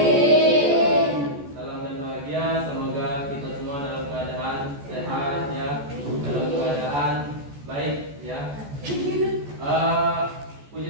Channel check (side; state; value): left; late; 14 ms